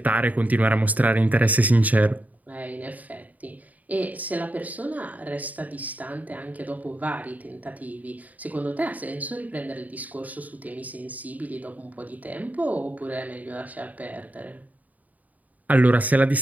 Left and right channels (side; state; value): left; late; 0.075 ms